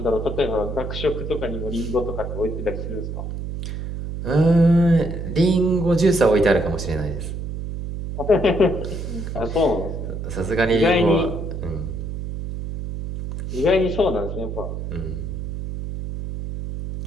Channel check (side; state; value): right; noise; hum, 6 dB below the sound